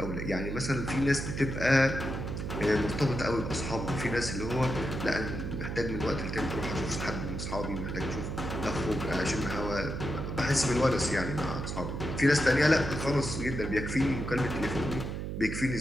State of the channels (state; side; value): noise; right; hum, 4 dB below the sound